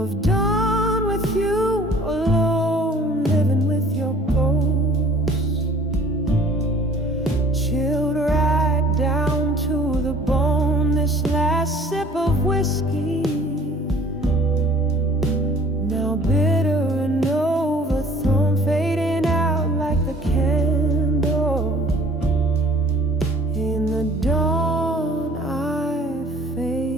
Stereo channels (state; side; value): normal; both; correlation 0.53